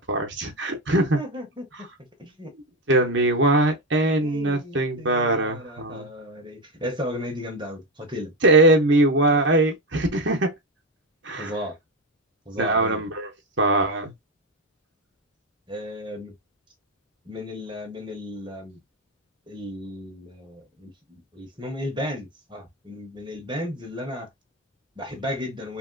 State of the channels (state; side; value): normal; both; correlation 0.14